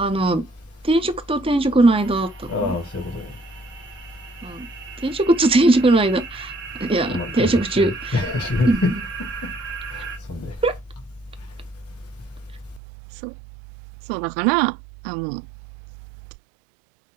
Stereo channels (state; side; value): drops out; left; at 12.8 s